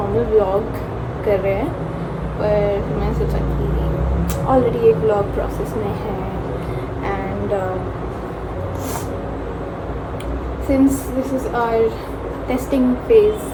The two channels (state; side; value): identical; both; correlation 1.00